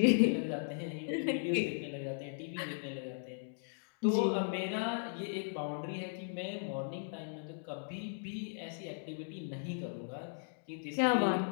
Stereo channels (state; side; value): silent; right; digital silence